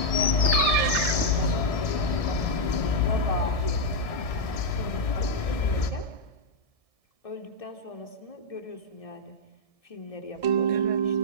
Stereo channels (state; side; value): late; right; 1.6 ms